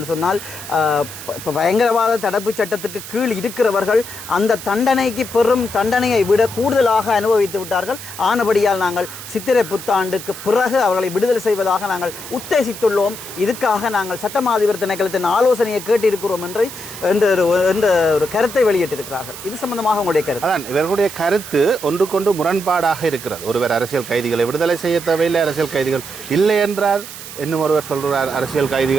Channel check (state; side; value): noise; right; hiss, 12 dB below the sound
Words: சொன்னால், பயங்கரவாத தடுப்பு சட்டத்துக்கு கீழ் இருக்கிறவர்கள் அந்த தண்டனைக்கு பெரும் தண்டனையை விட கூடுதலாக அனுபவித்து விட்டார்கள். ஆனபடியால் நாங்கள் சித்திரை புத்தாண்டுக்கு பிறகு அவர்களை விடுதலை செய்வதாக நாங்கள் உத்தேசித்துள்ளோம். இதுக்காக நாங்கள் சட்டமாதிபர் திணைக்களத்தின் ஆலோசனையை கேட்டிருக்கிறோம் என்ற ஒரு கருத்தை வெளியிட்டிருக்கிறார்கள். இது சம்பந்தமாக உங்களுடைய கருத்து? கருத்து ஒன்றுக்கொண்டு முரண்பாடாக இருக்கிறது. ஒருவர் அரசியல் கைதிகளை விடுதலை செய்ய தேவையில்லை, அரசியல் கைதிகள் இல்லை என்றார். இன்னும் ஒருவர் சொல்கிறார் அரசியல்